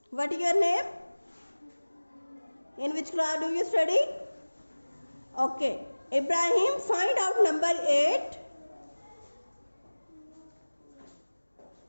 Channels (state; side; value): inverted; both; correlation -1.00